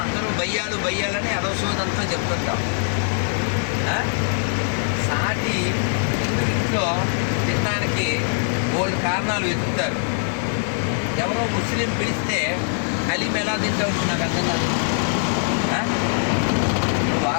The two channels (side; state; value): right; silent; 64 dB below the other